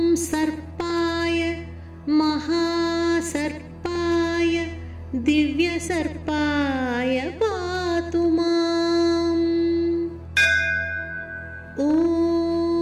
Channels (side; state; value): both; identical; correlation 1.00